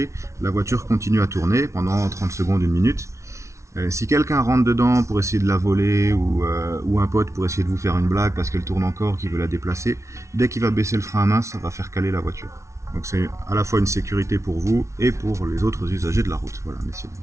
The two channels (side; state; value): left; late; 0.14 ms